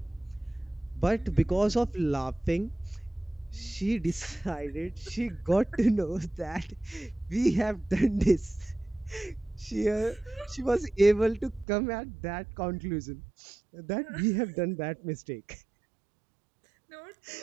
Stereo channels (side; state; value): left; drops out; at 11.7 s